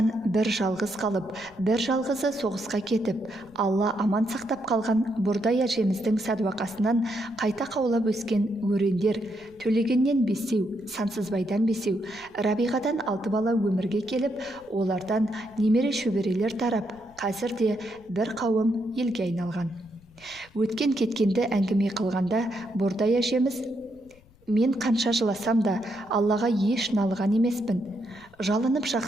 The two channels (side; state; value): left; noise; rumble, 27 dB below the sound